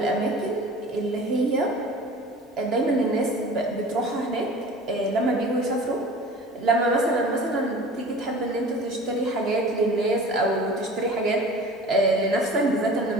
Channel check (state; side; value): normal; both; correlation 0.41